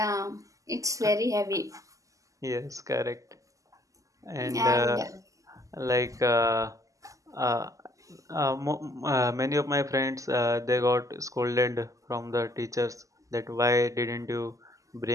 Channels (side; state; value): left; late; 0.16 ms